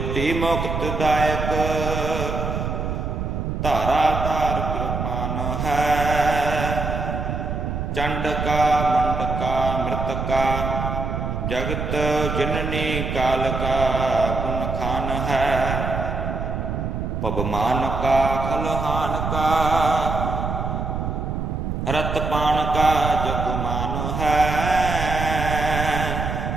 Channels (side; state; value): right; noise; rumble, 3 dB below the sound